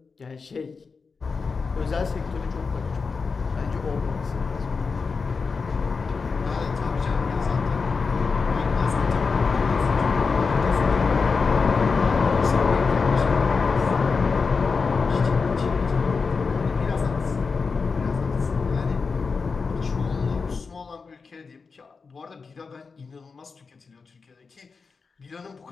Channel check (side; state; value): right; quieter; 4.8 dB